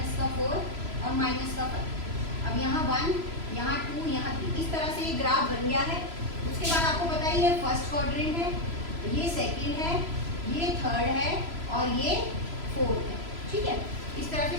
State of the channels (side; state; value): left; late; 3.0 ms